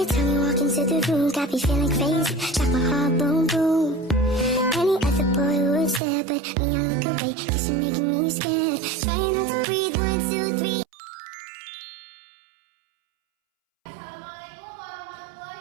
time you walk into the room, got me feeling crazy, like my heart boom boom. Any other boy would stare, but me I look away, cause you're making me scared. Trying not to breathe, 1, 2, 3. Assalamualaikum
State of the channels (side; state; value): left; drops out; at 6.0 s